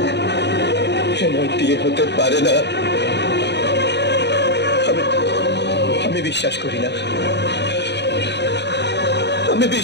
হেনার বিয়ে হতে পারে না। আমি বিশ্বাস করি না, আমি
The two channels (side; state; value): right; late; 0.50 ms